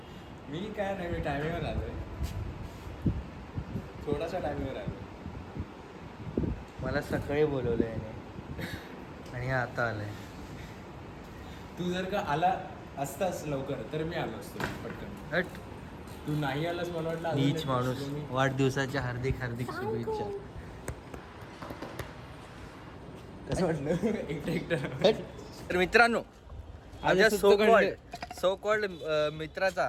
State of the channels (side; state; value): both; identical; correlation 1.00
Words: मी काय नाही, मी टायमिंगवर आलोय. थोडासा टायमिंगवर आलो. मला सकाळी बोलवलं याने आणि हे आता आलंय. तू जर का आला असतास लवकर तर मी आलो असतो पटकन. हट. तू नाही आलास मला वाटलं अजून नीच एक माणूस. दिवस मी- वाढदिवसाच्या हार्दिक हार्दिक शुभेच्छा. कसं वाटलं एकटं एकटं. तर मित्रांनो, माझ्या सो कॉल्ड मित्राचा,